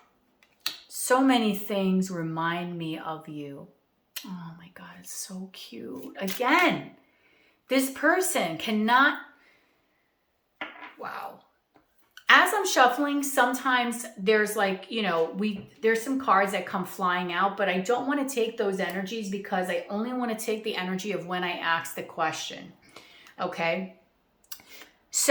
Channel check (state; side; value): identical; both; correlation 1.00